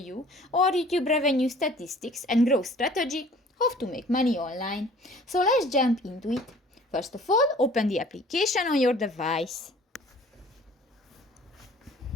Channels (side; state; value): both; normal; correlation 0.51